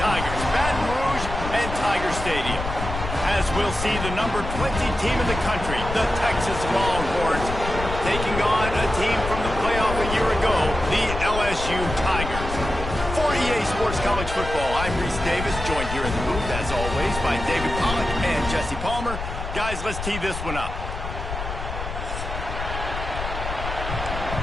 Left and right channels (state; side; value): noise; left; rumble, 6 dB below the sound